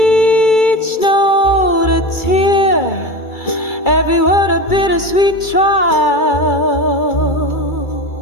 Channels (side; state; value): right; late; 2.3 ms